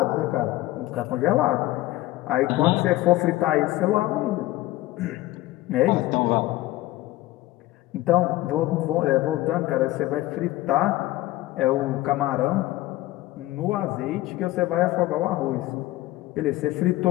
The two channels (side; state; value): right; quieter; 17.1 dB